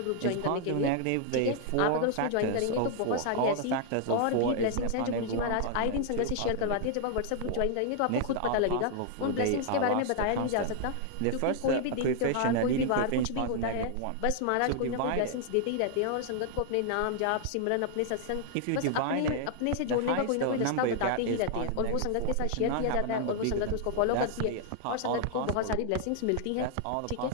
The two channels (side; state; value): both; different; correlation -0.01